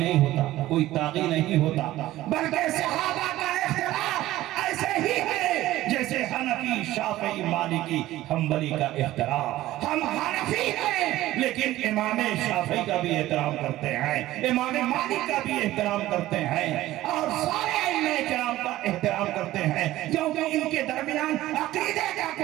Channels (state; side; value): quieter; left; 15.6 dB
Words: ہوتا، کوئی طاغی نہیں ہوتا، بلکہ صحابہ کا اختلاف ایسے ہی ہے جیسے حنفی شافعی مالکی حنبلی کا اختلاف۔ ہم حنفی ہیں لیکن امام شافعی کا بھی احترام کرتے ہیں، امام مالک کا بھی احترام کرتے ہیں، اور سارے ائمہ کرام کا احترام کرتے ہیں، کیونکہ ان کے درمیان عقیدے کا